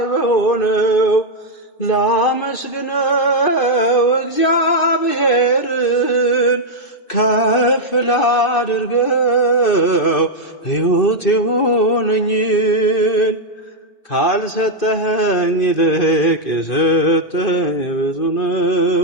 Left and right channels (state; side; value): late; right; 2.2 ms